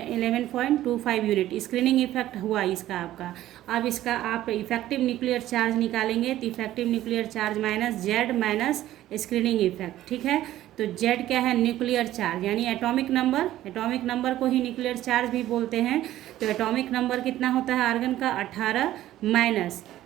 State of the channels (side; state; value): left; quieter; 13.9 dB